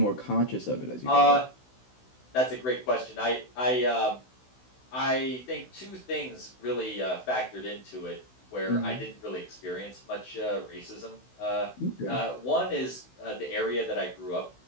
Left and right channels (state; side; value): late; right; 16 ms